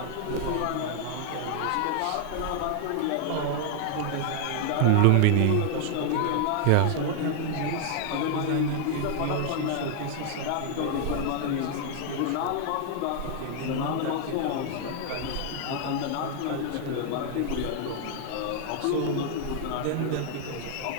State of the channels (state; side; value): different; both; correlation 0.00